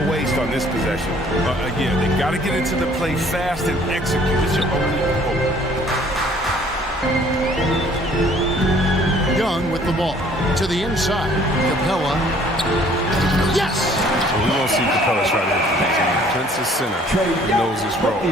waste on this possession. Again, they got to get into the play fast and execute. It's your only hope. Young with the ball. To the inside. Capella. Yes! So we won't see Capella try to hit the next one. Prince's center. He knows his role.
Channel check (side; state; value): both; normal; correlation 0.57